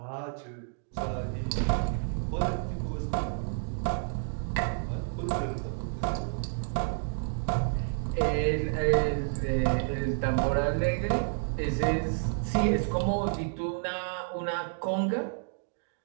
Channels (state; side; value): silent; left; digital silence